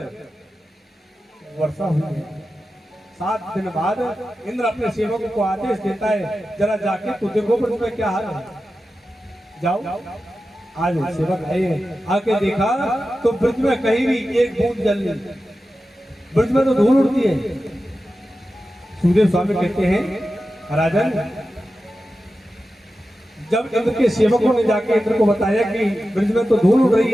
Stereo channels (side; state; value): both; normal; correlation 0.93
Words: वर्षा हुई है। 7 दिन बाद इंद्र अपने सेवकों को आदेश देता है जरा जाके तो देखो ब्रज में क्या हाल है। जाओ। आज सेवक आए आके देखा तो ब्रज में कहीं भी एक बूंद जल नहीं। ब्रज में तो धूल उड़ती है। सुखदेव स्वामी कहते हैं राजन जब इंद्र के सेवकों ने जाके इंद्र को बताया कि ब्रज में तो धूल उड़ रही